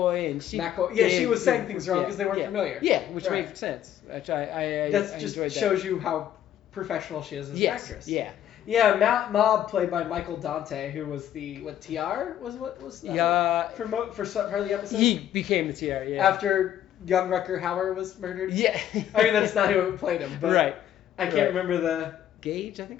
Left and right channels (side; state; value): right; quieter; 11.0 dB